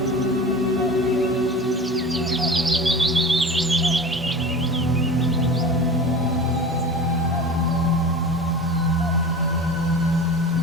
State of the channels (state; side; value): normal; both; correlation 0.34